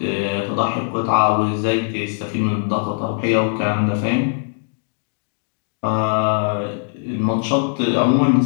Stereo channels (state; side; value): silent; right; 66 dB below the other